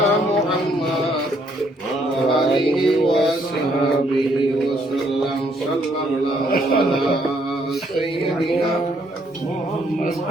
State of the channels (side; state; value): both; normal; correlation 0.69